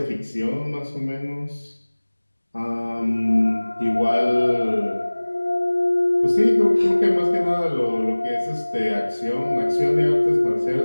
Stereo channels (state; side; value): inverted; both; correlation -1.00